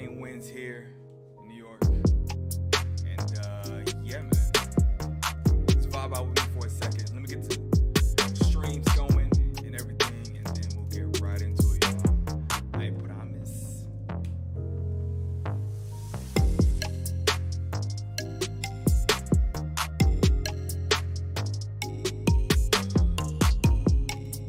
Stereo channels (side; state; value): both; identical; correlation 1.00